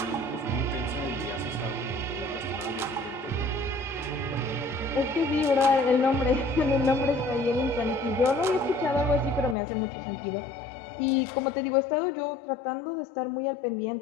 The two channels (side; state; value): right; drops out; at 9.6 s